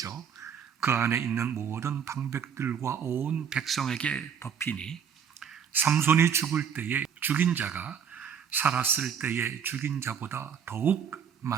그 안에 있는 모든 방백들과 온 백성에게 덮이니, 삼손이 죽을 때에 죽인 자가 살았을 때에 죽인 자보다 더욱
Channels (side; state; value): left; quieter; 7.7 dB